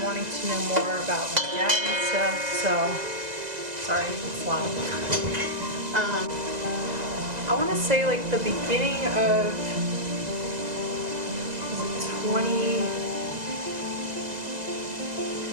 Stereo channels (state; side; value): late; left; 2.0 ms